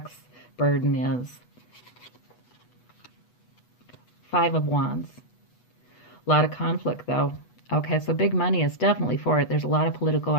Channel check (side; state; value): right; late; 8.2 ms